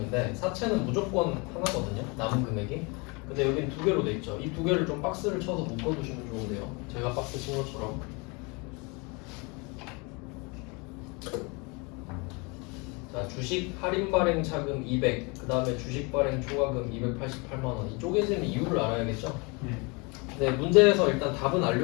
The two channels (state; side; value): quieter; right; 29.4 dB